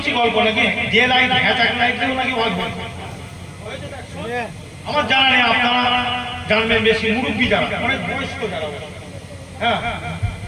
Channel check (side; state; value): both; identical; correlation 1.00